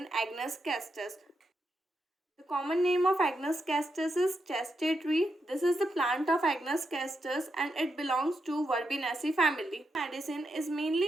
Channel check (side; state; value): both; normal; correlation 0.84